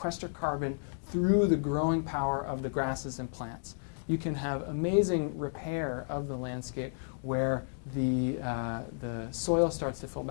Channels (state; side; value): silent; right; digital silence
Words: carbon through the growing power of the grasses and plants. You can have amazing repair of the landscape where the soil starts to fill